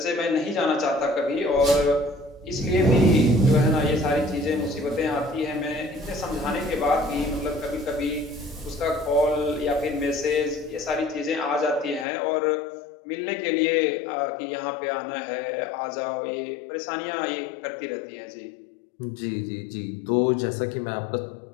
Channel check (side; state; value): right; drops out; at 12.1 s